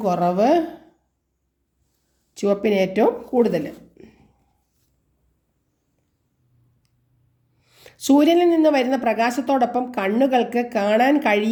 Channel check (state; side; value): identical; both; correlation 1.00